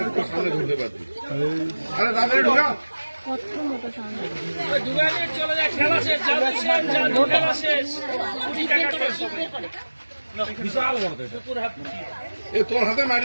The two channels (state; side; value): inverted; both; correlation -1.00